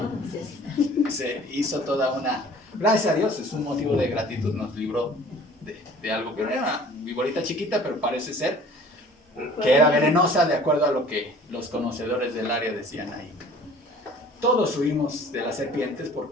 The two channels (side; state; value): both; normal; correlation 0.49